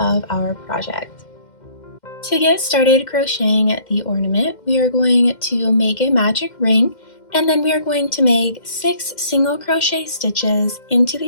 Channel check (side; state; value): right; late; 2.1 ms